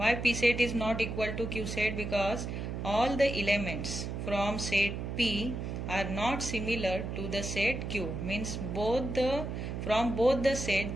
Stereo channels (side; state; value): right; noise; hum, 4 dB below the sound